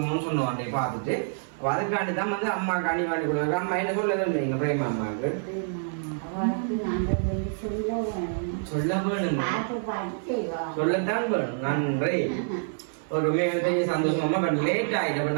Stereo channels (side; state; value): left; silent; digital silence